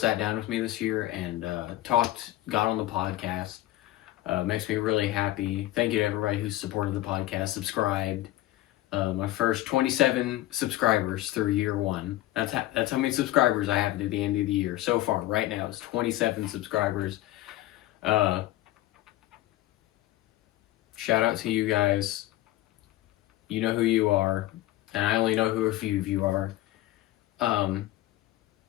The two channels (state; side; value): quieter; right; 15.9 dB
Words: down with me this year and got on the podcast. Makes me really happy. Thank you to everybody who supported the podcast, subscribed. My first 27 subscribers through year one. That's how many subscribers I have at the end of the year. So far, right now, it's 27 subscribers. Shout out to you guys. You know who you are. And I only know who a few of you are.